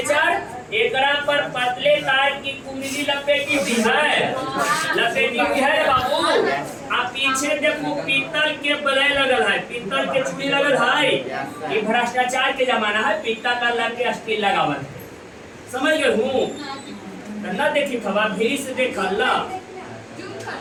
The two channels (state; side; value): identical; both; correlation 1.00